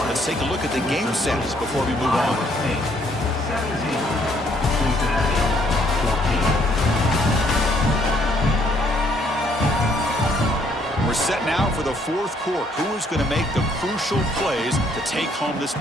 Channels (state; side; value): normal; both; correlation 0.67